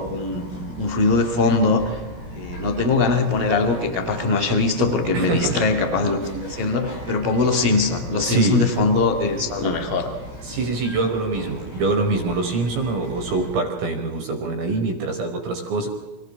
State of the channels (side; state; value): left; late; 17 ms